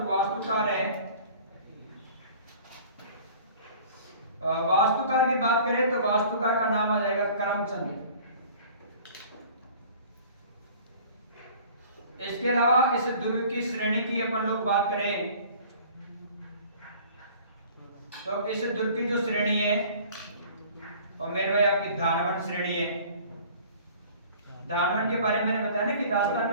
वास्तुकार है, वास्तुकार की बात करें तो वास्तुकार का नाम आ जाएगा करमचंद। इसके अलावा इस दुर्ग की श्रेणी की अपन लोग बात करें तो इस दुर्ग की जो श्रेणी है और मेरे भाई आपकी धानवंत श्रेणी है। धानवंत के बारे में मैंने बताया ना कि राजस्थान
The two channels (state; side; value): inverted; both; correlation -0.48